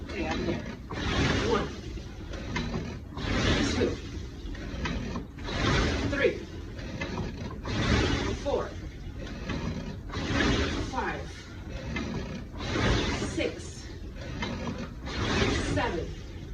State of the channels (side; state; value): both; identical; correlation 1.00